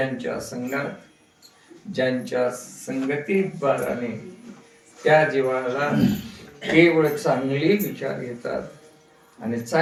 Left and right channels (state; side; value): identical; both; correlation 1.00